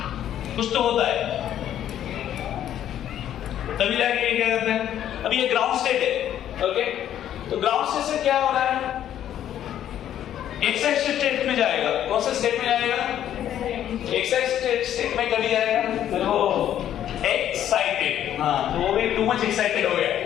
कुछ तो होता है तभी जाके ये क्या करते हैं. अभी ये ग्राउंड स्टेट है. ओके. तो ग्राउंड स्टेट से क्या हो रहा है एक्साइटेड स्टेट में जाएगा. कौन सा स्टेट में जाएगा एक्साइटेड स्टेट में कभी जाएगा फिर वो एक्साइटेड. हाँ तो वो भी टू मच एक्साइटेड हो गया.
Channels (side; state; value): right; quieter; 10.9 dB